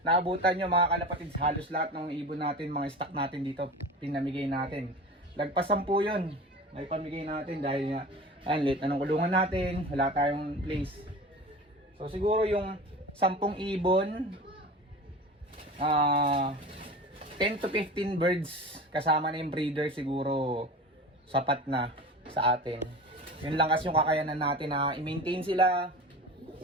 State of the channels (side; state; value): both; normal; correlation 0.34